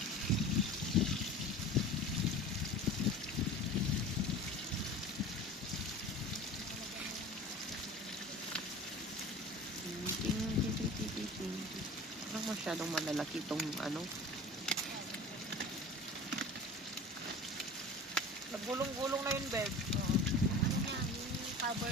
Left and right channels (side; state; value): both; normal; correlation 0.37